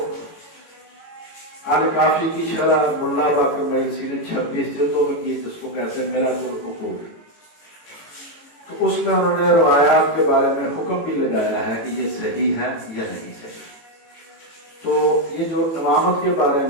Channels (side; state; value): right; late; 18 ms